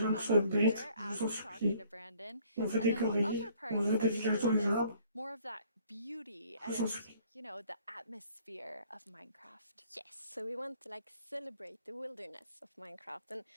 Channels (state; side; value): inverted; both; correlation -0.59